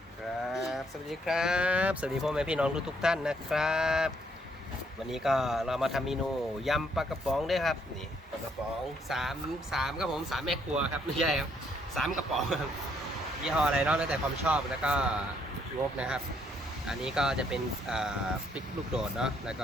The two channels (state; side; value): normal; both; correlation 0.70